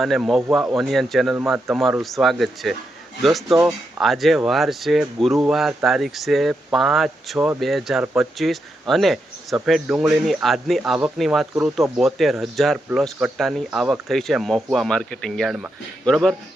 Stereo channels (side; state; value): both; normal; correlation 0.84